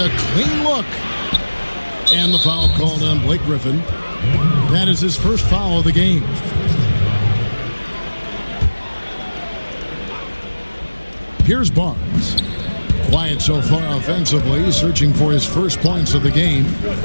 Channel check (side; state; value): both; inverted; correlation -1.00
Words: clean look. And the foul called on Blake Griffin. That is his first foul of the game. Here's Barnes. Quiet so far offensively, searching for his first points of the game.